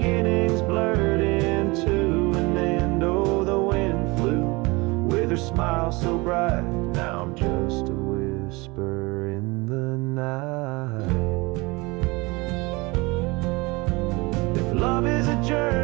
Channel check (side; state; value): left; quieter; 24.8 dB